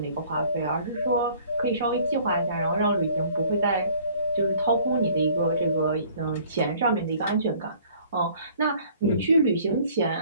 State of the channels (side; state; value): both; inverted; correlation -0.55